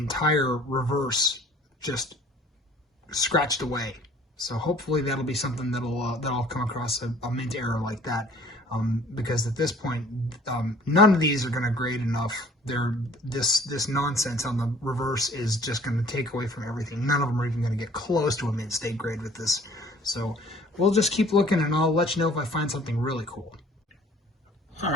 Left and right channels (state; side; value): normal; both; correlation 0.53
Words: reverse just scratched away. So hopefully that'll be something that'll come across a mint error like that. Because at this point, none of these are going to grade enough. This nonsense on the reverse is just going to take away from everything. None of them are even going to get close to a mint state grade with this. So we'll just keep looking, and I'll let you know if I find something really cool. All